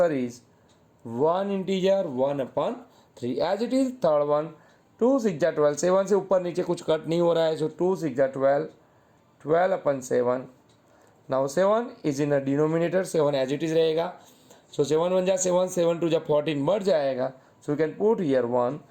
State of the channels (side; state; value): both; identical; correlation 1.00